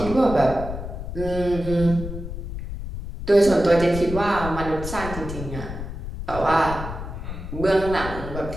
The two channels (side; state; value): left; noise; rumble, 8 dB below the sound